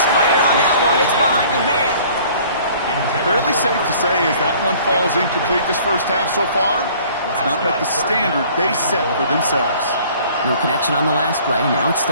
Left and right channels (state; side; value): inverted; both; correlation -0.53